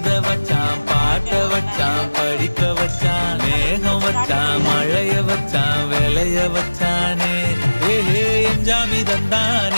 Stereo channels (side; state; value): both; inverted; correlation -1.00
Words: வச்சான் பாட்ட வச்சான் படிக்க வச்சான் மேகம் வச்சான் மழைய வச்சான் விளைய வச்சானே ஏஹே எஞ்சாமி